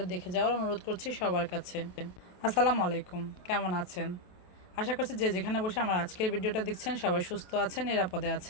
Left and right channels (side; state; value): right; late; 28 ms